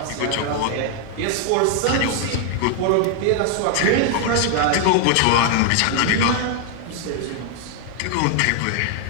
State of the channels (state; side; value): different; both; correlation 0.00